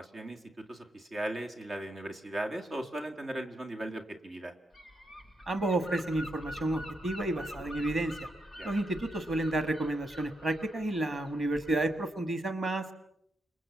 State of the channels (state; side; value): normal; both; correlation 0.82